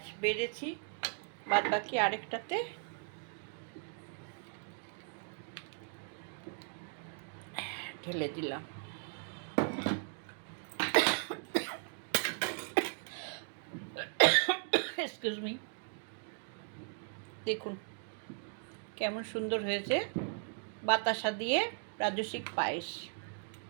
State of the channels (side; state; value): left; silent; 53 dB below the other